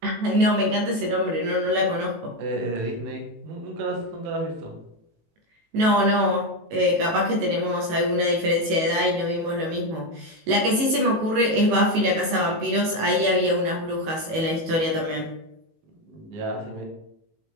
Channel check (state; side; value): late; left; 19 ms